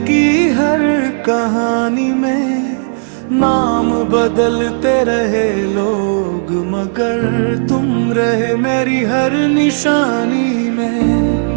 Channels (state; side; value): silent; left; digital silence